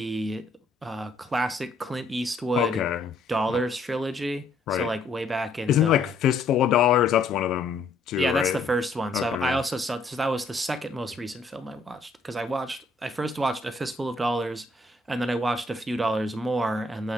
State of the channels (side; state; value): right; quieter; 3.3 dB